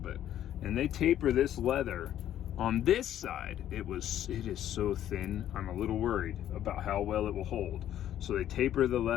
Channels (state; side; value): quieter; right; 11.4 dB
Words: and they taper this leather on this side. It is so thin, I'm a little worried about how well it will hold. So they taper the